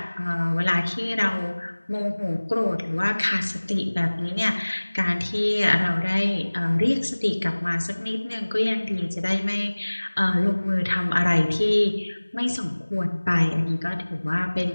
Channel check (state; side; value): inverted; both; correlation -1.00